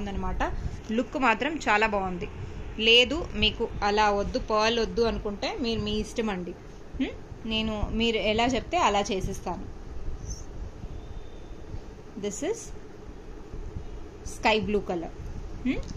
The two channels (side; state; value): both; identical; correlation 1.00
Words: లుక్ మాత్రం చాలా బాగుంది. లేదు మీకు అలా వద్దు, పర్ల్ వద్దు అనుకుంటే మీరు మీ ఇష్టం అండి. మీరు ఎలా చెప్తే అలా చేసిస్తాను. This is sky blue colour,